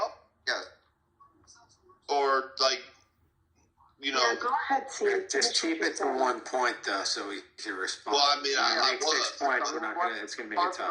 Yes. Or, Yeah, go ahead, C. Just keep it to one point, though, so we can respond. Well, I mean, I make 6 points. It's going to make it tough.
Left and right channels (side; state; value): both; identical; correlation 1.00